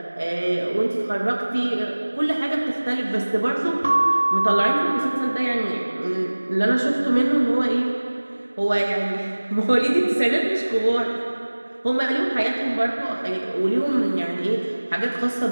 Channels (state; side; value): inverted; both; correlation -1.00